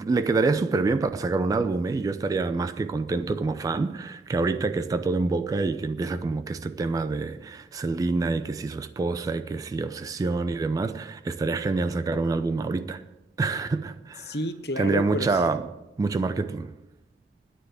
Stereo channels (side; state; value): left; quieter; 3.1 dB